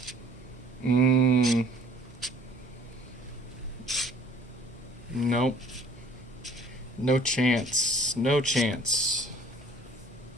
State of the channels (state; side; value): normal; both; correlation 0.54